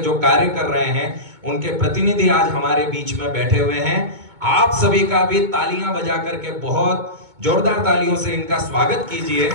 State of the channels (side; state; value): left; late; 2.2 ms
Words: जो कार्य कर रहे हैं, उनके प्रतिनिधि आज हमारे बीच में बैठे हुए हैं। आप सभी का भी तालियां बजा करके बहुत जोरदार तालियों से इनका स्वागत कीजिए।